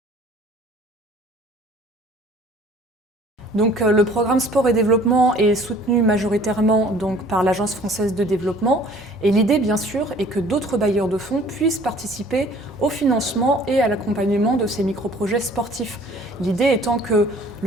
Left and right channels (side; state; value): both; normal; correlation 0.53